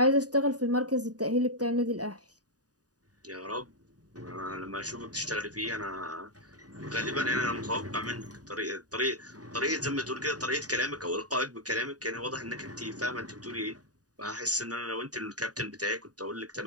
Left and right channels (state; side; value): late; left; 0.68 ms